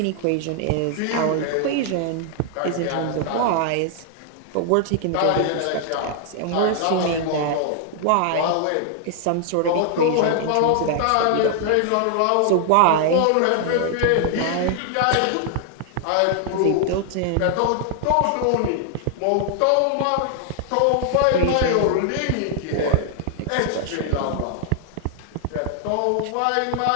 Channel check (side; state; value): both; different; correlation 0.00